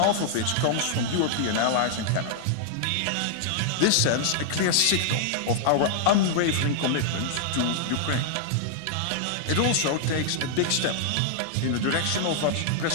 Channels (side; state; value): both; different; correlation -0.01